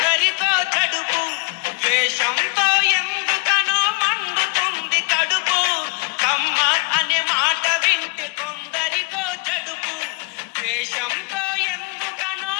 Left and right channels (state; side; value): quieter; right; 32.3 dB